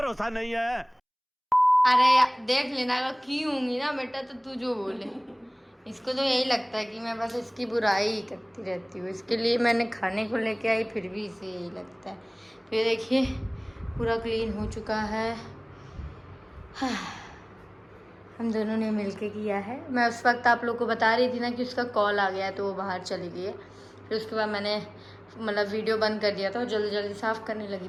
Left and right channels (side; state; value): both; identical; correlation 1.00